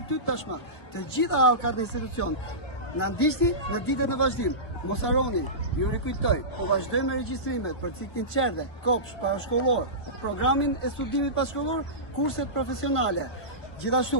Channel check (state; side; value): late; right; 1.2 ms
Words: tashmë. Të gjitha halkat e institucion. Na ndiqni në ditët në vazhdim. Mos harroni, ju rikujtoj, po vazhdojmë me regjistrimet për ciklin qerdhe, kopsh, parashkollor, programin e studimit pashkollor, kurset profesionale.